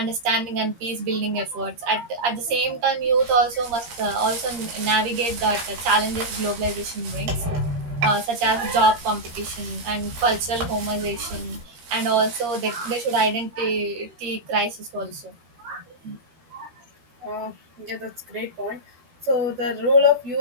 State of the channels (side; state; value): left; late; 13 ms